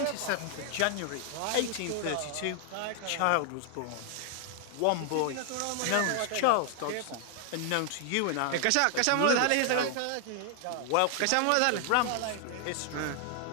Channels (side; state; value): both; different; correlation 0.00